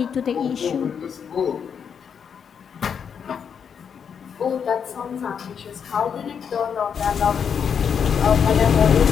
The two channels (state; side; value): quieter; right; 7.2 dB